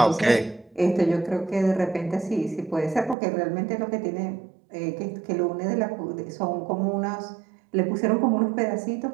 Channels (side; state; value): left; drops out; at 3.2 s